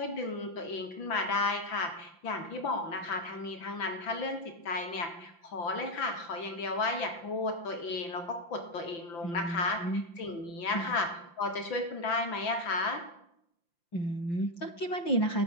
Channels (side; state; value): right; late; 5.9 ms